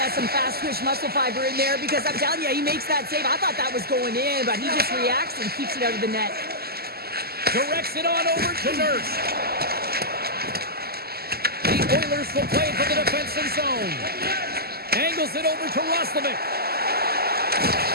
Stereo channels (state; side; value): late; left; 0.46 ms